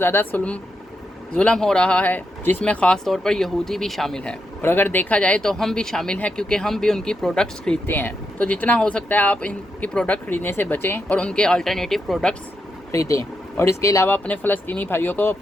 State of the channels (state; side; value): normal; both; correlation 0.83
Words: जुल्म हो रहा है, जिसमें ख़ास तौर पर यहूदी भी शामिल हैं, और अगर देखा जाए तो हम भी शामिल हैं क्योंकि हम भी उनकी प्रोडक्ट्स खरीदते हैं। तो जितना हो सकता है आप इनकी प्रोडक्ट खरीदने से बचें और उनके अल्टरनेटिव प्रोडक्ट्स खरीदें, और इसके अलावा अपने फ़लस्तीनी भाइयों को